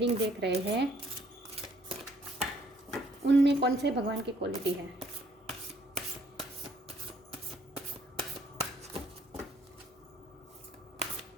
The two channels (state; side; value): normal; both; correlation 0.64